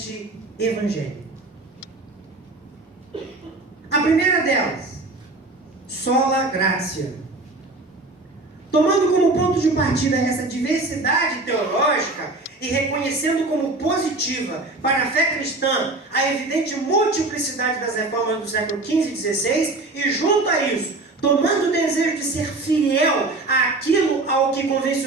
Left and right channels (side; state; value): left; quieter; 3.2 dB